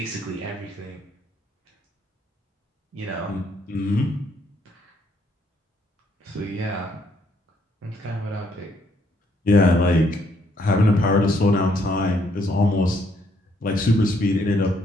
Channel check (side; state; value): both; normal; correlation 0.70